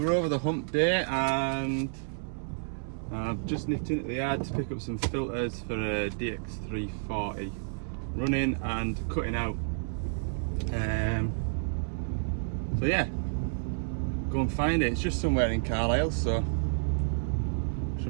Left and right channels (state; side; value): silent; left; 58 dB below the other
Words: hump day, and I've just nipped into the yard to pick up some filters for a DX340, running and cutting out. So yeah, go and find it. It's just somewhere in Carlisle, so